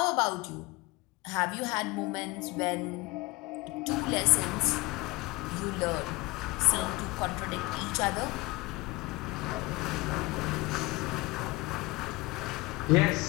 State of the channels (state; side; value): quieter; right; 22.9 dB